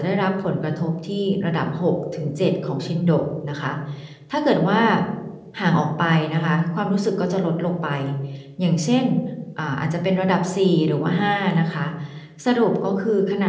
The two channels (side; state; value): both; identical; correlation 1.00